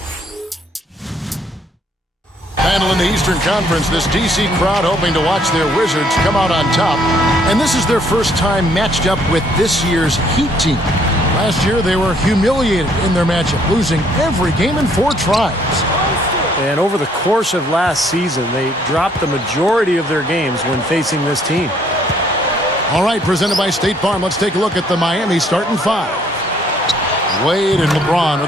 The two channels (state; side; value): normal; both; correlation 0.65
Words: Battle in the Eastern Conference, this DC crowd hoping to watch their Wizards come out on top. And this is their first time matched up with this year's Heat team. Last year, they were humiliated in their matchup, losing every game in 4 tries. And over the course of last season, they dropped the majority of their games when facing this team. All right, presented by State Farm, let's take a look at the Miami starting 5. Wade and LeBron are